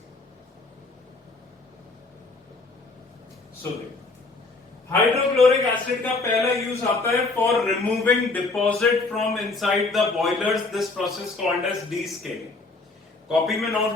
हाइड्रोक्लोरिक एसिड का पहला यूज आता है for removing deposit from inside the boilers. This process called as descaling. Copy में नोट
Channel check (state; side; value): quieter; right; 3.6 dB